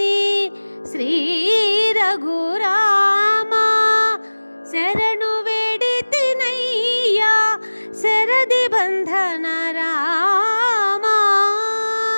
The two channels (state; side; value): inverted; both; correlation -1.00